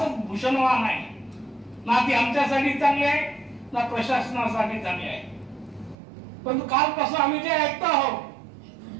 भूषणवान आहे, ना ती आमच्यासाठी चांगली आहे ना प्रशासनासाठी चांगली आहे. पण कालपासून आम्ही जे ऐकतो आहोत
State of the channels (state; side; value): drops out; left; at 6.0 s